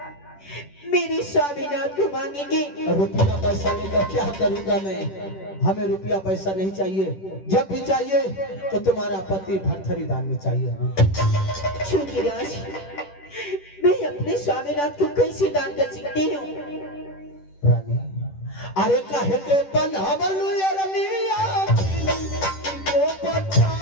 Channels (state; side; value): late; right; 10 ms